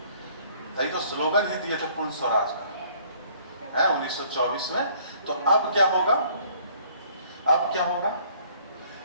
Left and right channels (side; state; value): both; inverted; correlation -0.59